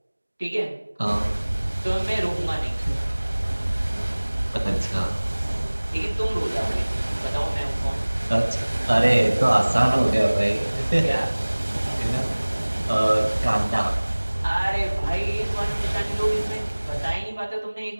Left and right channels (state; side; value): inverted; both; correlation -1.00